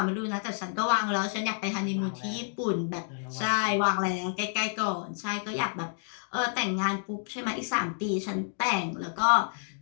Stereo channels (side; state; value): right; silent; digital silence